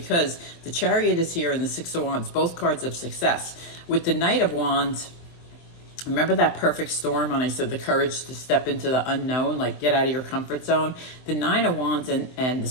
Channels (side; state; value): right; late; 23 ms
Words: the Chariot is here and the Six of Wands, both cards of success. With the Knight of Wands, remember that perfect storm when I said the courage to step into the unknown, like get out of your comfort zone? The Nine of Wands and the